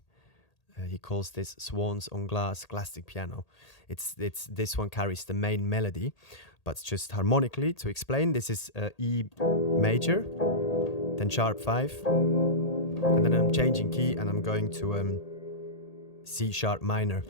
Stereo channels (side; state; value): right; late; 1.8 ms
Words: He calls this Swans on Glass classic piano. It's this one carries the main melody, but just harmonically to explain. This is E major, then sharp 5, and then I'm changing key and I'm going to C sharp minor.